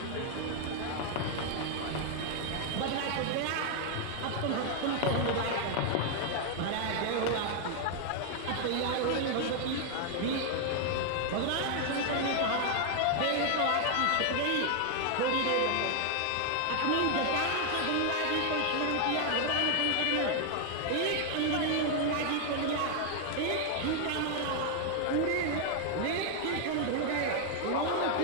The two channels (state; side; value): different; both; correlation 0.00